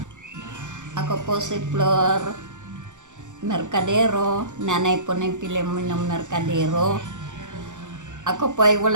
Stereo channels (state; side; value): late; left; 0.85 ms